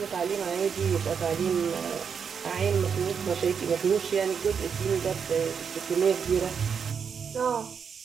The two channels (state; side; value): quieter; left; 6.7 dB